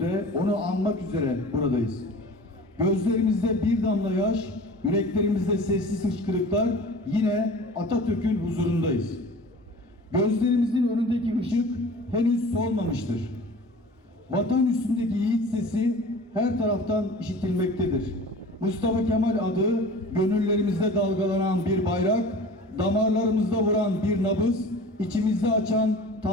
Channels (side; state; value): both; normal; correlation 0.40